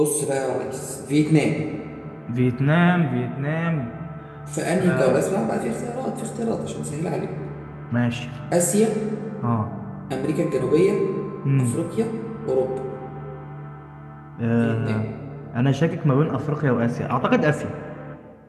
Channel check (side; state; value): both; identical; correlation 1.00